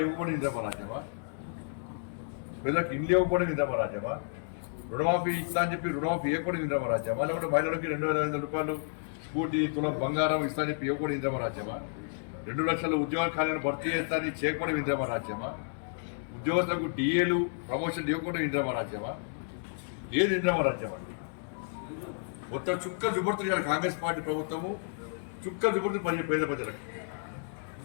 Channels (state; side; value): silent; right; digital silence